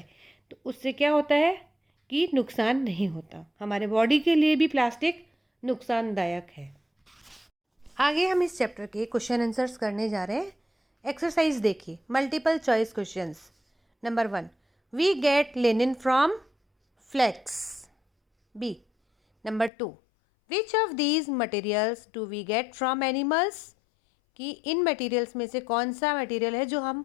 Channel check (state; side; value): drops out; right; at 19.7 s